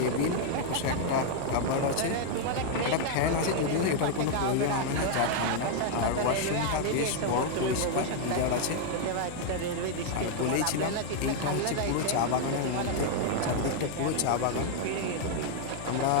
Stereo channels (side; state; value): both; different; correlation 0.00